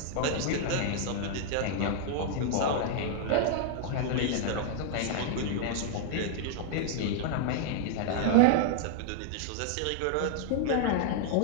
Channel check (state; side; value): different; both; correlation -0.01